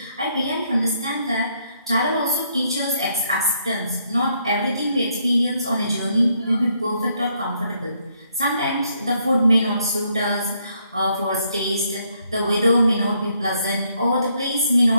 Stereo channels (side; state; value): both; inverted; correlation -0.73